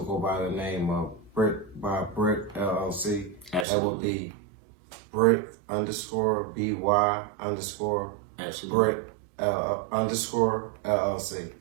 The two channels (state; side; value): drops out; left; at 3.7 s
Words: by the name of Brick LLC. Absolutely. That would be Brick _BY Absolutely. Brick _LLC.